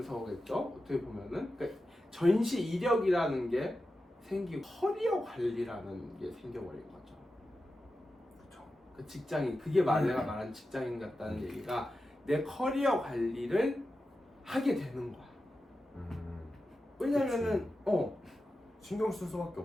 어떻게 보면은 그러니까 전시 이력이라는 게 생기고 커리어 관리라는 게 생겨버린 거죠. 그렇죠. 그 직장인 그게 내가 말한 직장인 같다는 얘기가 내 커리어 관리를 하게 되는 거야. 왜냐면은 신경 쓸 수밖에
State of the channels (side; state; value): both; normal; correlation 0.91